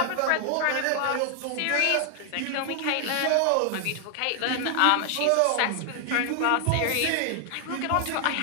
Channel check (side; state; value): both; different; correlation 0.00